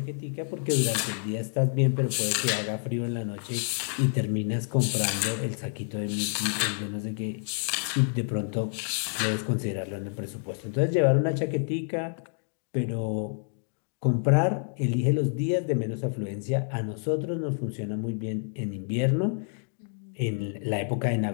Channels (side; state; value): right; silent; 59 dB below the other